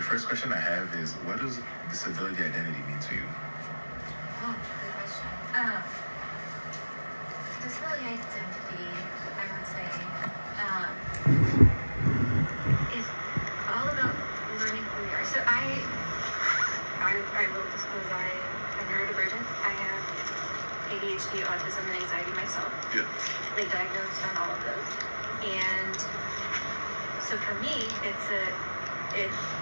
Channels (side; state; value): both; inverted; correlation -1.00